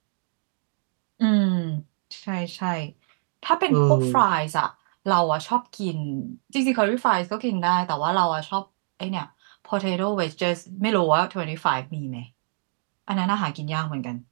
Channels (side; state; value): left; silent; digital silence